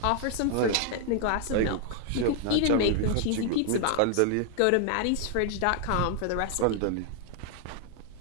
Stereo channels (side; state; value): both; different; correlation 0.00